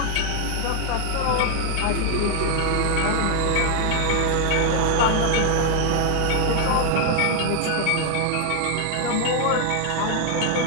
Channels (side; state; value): both; different; correlation 0.00